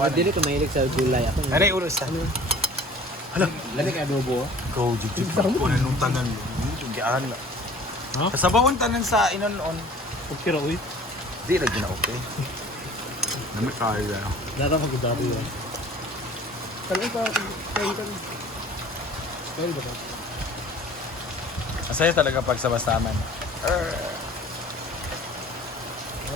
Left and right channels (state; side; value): normal; both; correlation 0.47